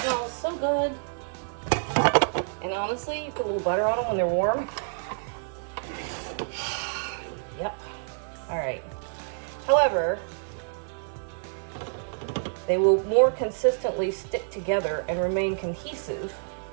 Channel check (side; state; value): left; silent; 59 dB below the other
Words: smells so good. And honestly, you put a little butter on them when they're warm. Yep. All right. However, they will more consistently stick together and remain cohesive.